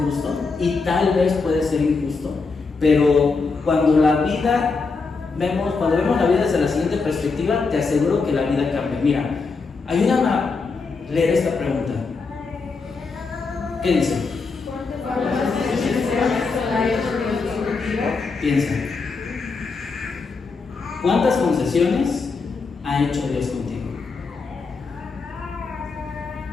y tal vez puede ser injusto, pero cuando vemos la vida desde la siguiente perspectiva, te aseguro que la vida cambia. Mira, ayúdame a leer esta pregunta. ¿Qué dice? Piensa. ¿Cuántas concesiones ha hecho Dios contigo?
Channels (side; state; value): right; quieter; 4.4 dB